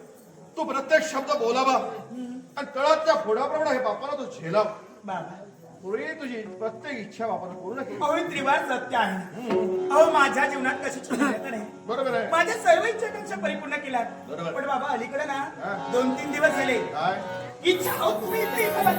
तू प्रत्येक शब्द बोलावा आणि तळातल्या फोडाप्रमाणे हे बापाला तू झेलाव. बाबा पुढे तुझी प्रत्येक इच्छा बापाला पूर्ण केली. अहो हे त्रिवार सत्य आहे. अहो माझ्या जीवनात कशाची मर्यादा नाही. बरोबर आहे. माझ्या सर्व इच्छाकांक्षा परिपूर्ण केल्या. बरोबर. पण बाबा अलीकडे ना हा. 2-3 दिवस झाले काय इच्छा अहो तुम्ही इथे इथं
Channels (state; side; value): identical; both; correlation 1.00